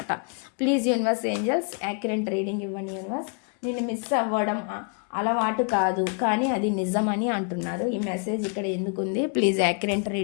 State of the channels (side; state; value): right; quieter; 38.9 dB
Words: Please universe angels accurate reading ఇవ్వండి యూనివర్స్. నిన్ను మిస్ అవ్వడం అలవాటు కాదు కానీ అది నిజం అని అంటున్నారు. ఈ మెసేజ్ ఇక్కడ ఎందుకుంది, ప్లీజ్ యాక్యురేట్